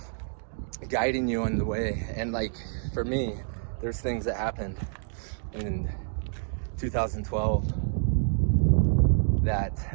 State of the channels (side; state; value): left; silent; digital silence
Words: guiding you on the way. And like, for me, there's things that happened in 2012 that